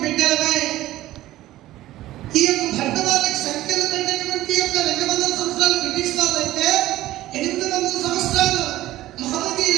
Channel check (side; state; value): left; quieter; 15.4 dB